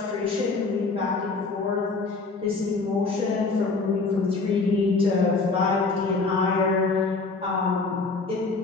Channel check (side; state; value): right; quieter; 3.9 dB